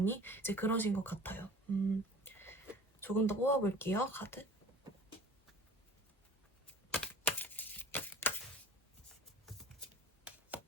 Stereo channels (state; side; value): normal; both; correlation 0.45